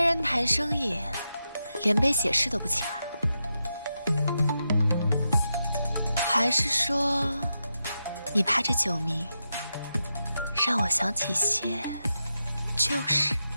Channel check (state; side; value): inverted; both; correlation -0.87